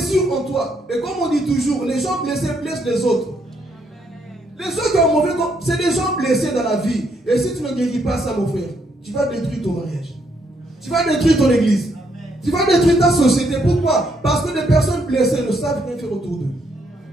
en toi. Et comme on dit toujours, les gens blessés blessent les autres. Les gens qui ont mauvais corps, c'est des gens blessés dans la vie. Et si tu ne guéris pas ça, mon frère, tu vas détruire ton mariage. Tu vas détruire ton église. Tu vas détruire ta société. Pourquoi? Parce que les personnes blessées ne savent rien faire autour d'eux.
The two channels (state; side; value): normal; both; correlation 0.74